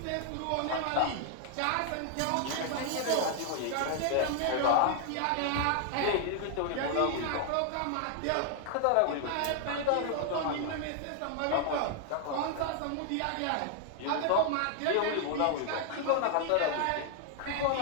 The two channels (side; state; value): both; different; correlation 0.00